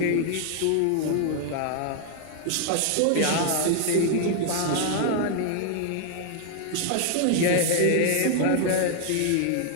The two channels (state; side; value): different; both; correlation 0.00